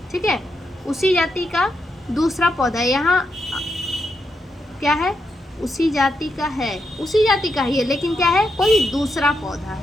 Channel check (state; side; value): normal; both; correlation 0.83